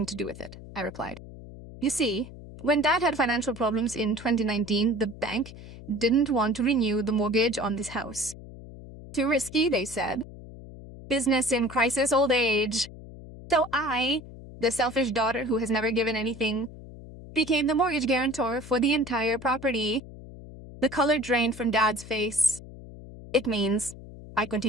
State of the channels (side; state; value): left; noise; hum, 15 dB below the sound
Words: to do with it, I replied. You see, when Dad had financial problems in 2019, the bank didn't want to renew the mortgage on this house. Too risky, they said. Business in crisis old age. So I, the selfish daughter who has never given anything, became the mortgage guarantor for the entire property. The color drained from Dad's face. It means, I